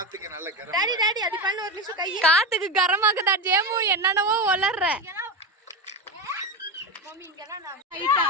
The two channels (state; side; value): normal; both; correlation 0.17